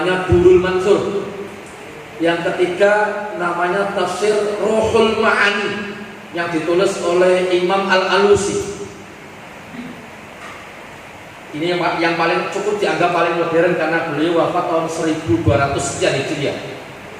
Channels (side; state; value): both; identical; correlation 1.00